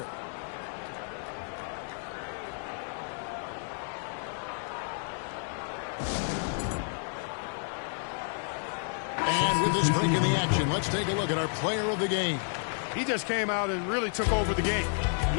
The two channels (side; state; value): right; silent; 57 dB below the other